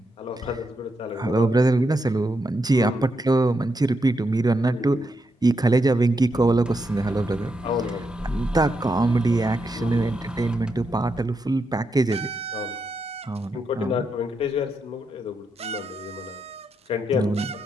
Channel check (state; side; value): normal; both; correlation 0.83